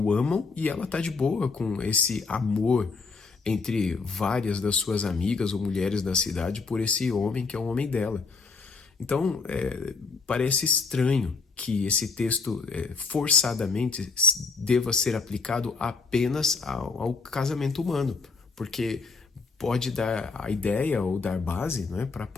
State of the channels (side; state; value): right; quieter; 4.5 dB